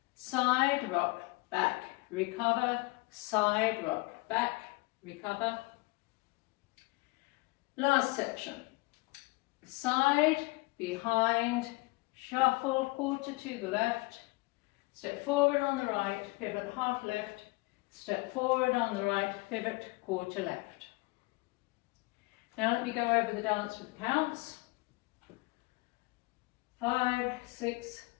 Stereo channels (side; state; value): right; quieter; 24.5 dB